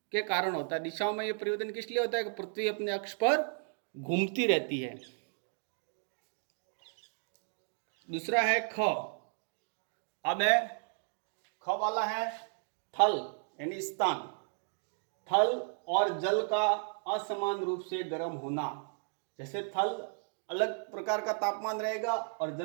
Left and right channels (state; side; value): silent; left; digital silence